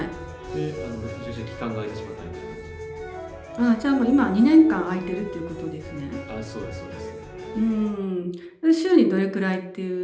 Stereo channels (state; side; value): identical; both; correlation 1.00